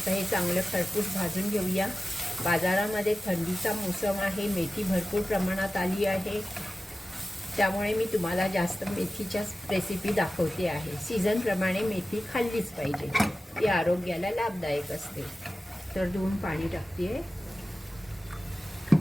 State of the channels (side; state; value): both; normal; correlation 0.95